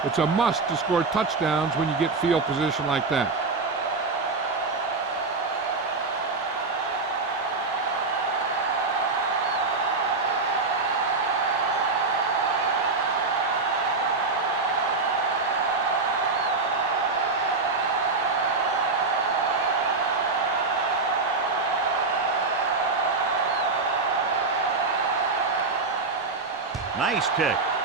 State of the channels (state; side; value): quieter; left; 4.0 dB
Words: It's a must to score touchdowns when you get field position like that. Nice kick.